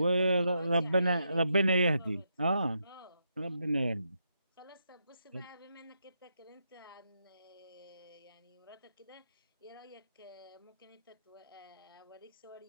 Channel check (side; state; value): both; inverted; correlation -0.82